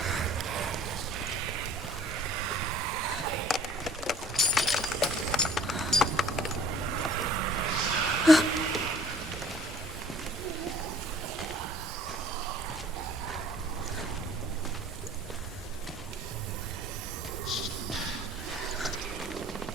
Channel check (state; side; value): normal; both; correlation 0.52